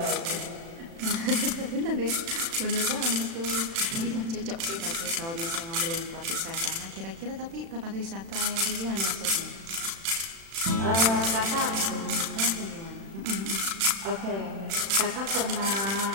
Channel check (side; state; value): left; late; 36 ms